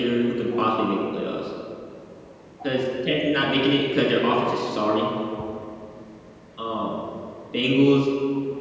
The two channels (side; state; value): both; identical; correlation 1.00